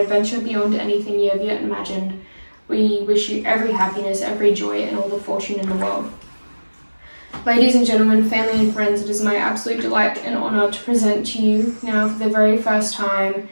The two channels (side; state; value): both; inverted; correlation -1.00